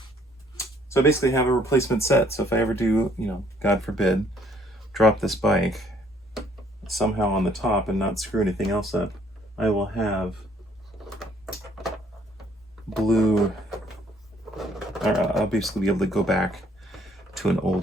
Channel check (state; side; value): normal; both; correlation 0.63